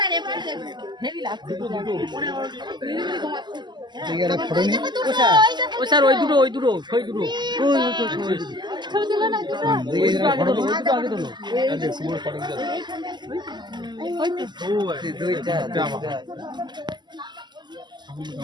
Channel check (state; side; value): late; left; 0.21 ms